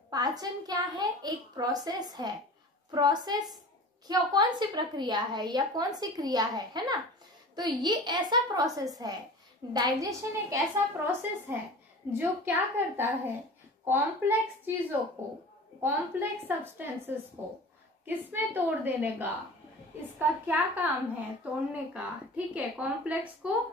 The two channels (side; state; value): both; normal; correlation 0.38